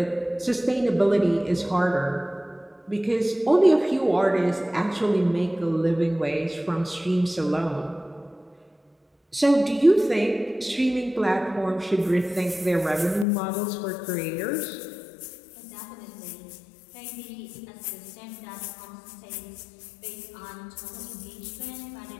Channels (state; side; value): drops out; right; at 13.2 s